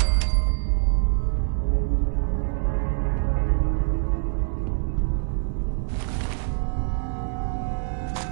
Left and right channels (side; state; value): left; silent; 59 dB below the other